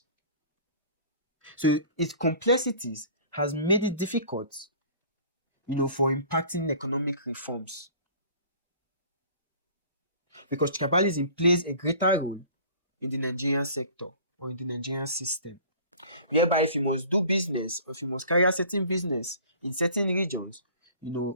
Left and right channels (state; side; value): inverted; both; correlation -0.47